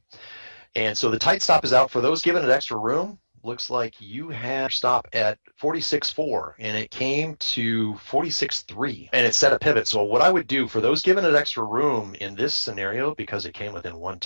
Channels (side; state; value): both; inverted; correlation -1.00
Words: And so the tight stop is out. For those giving it extra room, looks like you have stop at 46.4, and it came to 46.3, and it set a pivot. So what I would do for those giving it extra room in this scenario, because it came within 1